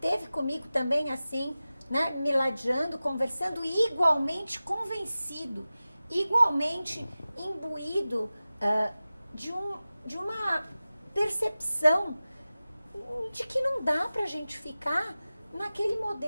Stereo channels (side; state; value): both; inverted; correlation -0.96